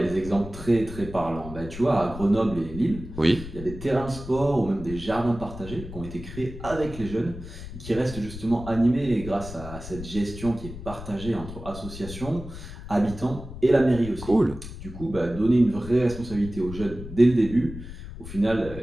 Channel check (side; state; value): left; noise; rumble, 11 dB below the sound